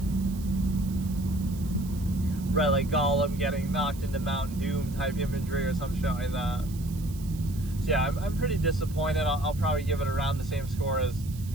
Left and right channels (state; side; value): noise; right; hiss, 19 dB below the sound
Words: Right, like Gollum getting knocked into Mount Doom type imagery or some shit like that. So yeah, I'm pretty disappointed. I'll probably give it around the same score as